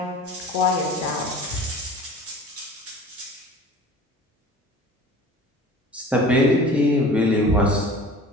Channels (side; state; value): both; normal; correlation 0.41